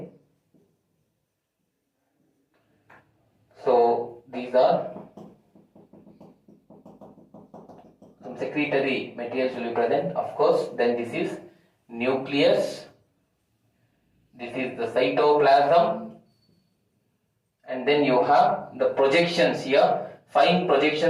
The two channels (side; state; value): both; identical; correlation 1.00